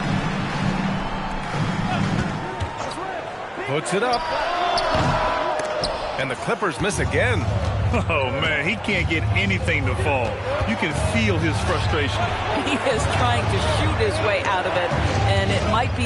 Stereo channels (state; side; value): identical; both; correlation 1.00